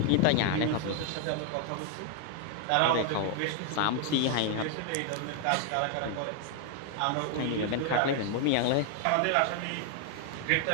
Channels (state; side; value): different; both; correlation 0.00